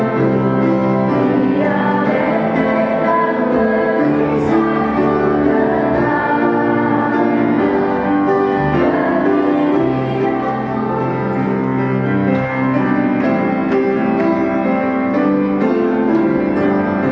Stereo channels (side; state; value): both; identical; correlation 1.00